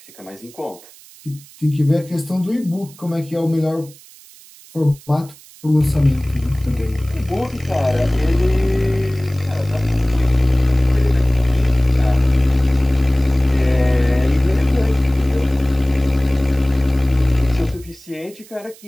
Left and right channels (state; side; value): noise; right; hiss, 23 dB below the sound